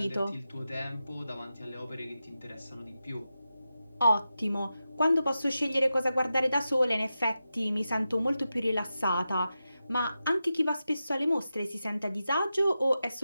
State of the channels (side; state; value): both; inverted; correlation -0.91